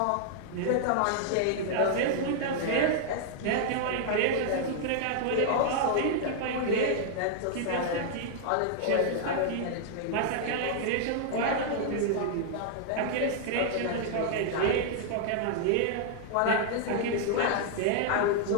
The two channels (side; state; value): both; different; correlation -0.01